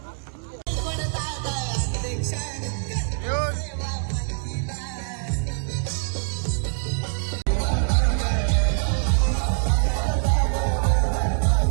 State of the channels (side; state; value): left; silent; 60 dB below the other